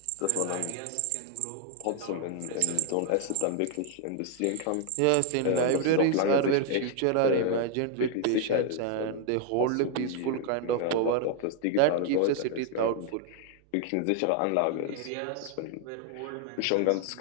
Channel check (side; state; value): both; different; correlation 0.00